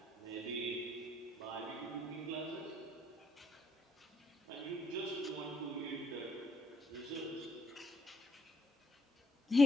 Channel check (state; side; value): normal; both; correlation 0.70